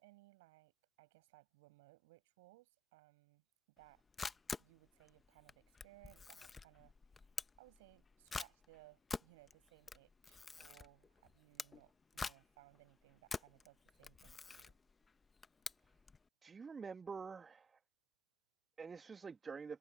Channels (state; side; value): normal; both; correlation 0.87